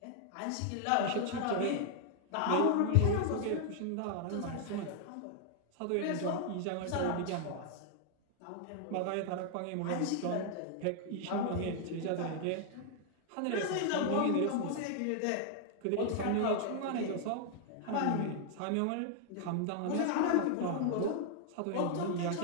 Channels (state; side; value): different; both; correlation 0.00